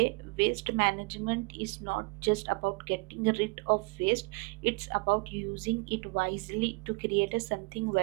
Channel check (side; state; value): left; quieter; 28.4 dB